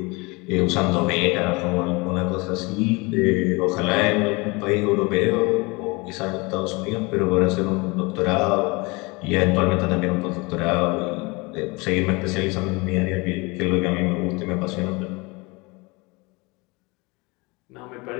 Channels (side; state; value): right; quieter; 26.1 dB